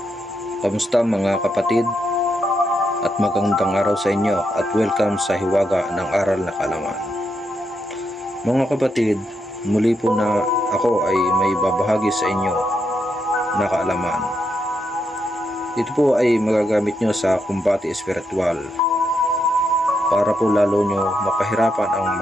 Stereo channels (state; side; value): normal; both; correlation 0.81